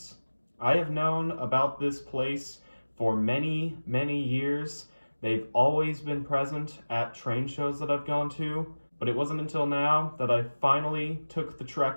I have known about this place for many, many years. They've always been present at train shows that I've gone to, but it wasn't until now that I finally took the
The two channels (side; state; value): both; inverted; correlation -1.00